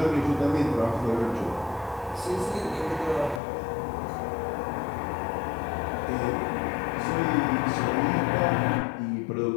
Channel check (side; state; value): right; drops out; at 3.4 s